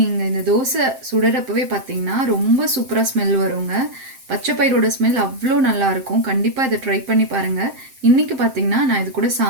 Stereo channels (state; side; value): late; left; 7.6 ms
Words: இந்த தோசை சுடுறப்பவே பார்த்தீங்கன்னா ரொம்ப சூப்பராக ஸ்மெல் வருங்க. பச்சைப்பயிரோட ஸ்மெல் அவ்வளோ நல்லாயிருக்கும். கண்டிப்பாக இதை ட்ரை பண்ணி பாருங்கள். இன்றைக்கி பார்த்தீங்கன்னா நான் இது கூட